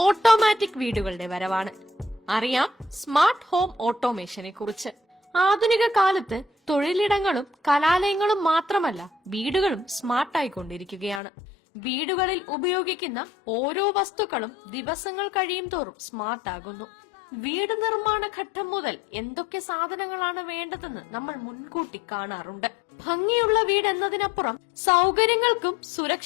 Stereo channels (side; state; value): right; drops out; at 11.2 s